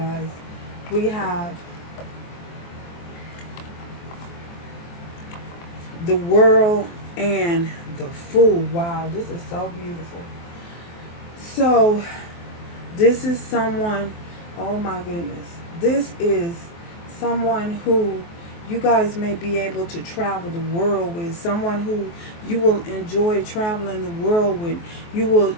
We have the World and the Fool. Wow, this is so beautiful. So this is someone, oh my goodness. This is someone who you guys may be able to travel the world with. Someone who you will enjoy traveling the world with. You will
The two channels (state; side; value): late; right; 23 ms